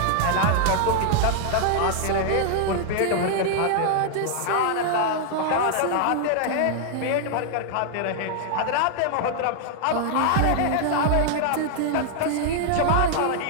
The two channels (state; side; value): different; both; correlation 0.00